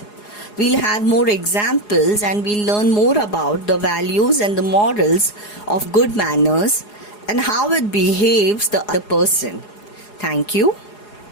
We'll have more examples and we'll learn more about the values and the morals of good manners and how it behaves the other person. Thank you.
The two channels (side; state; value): right; late; 4.8 ms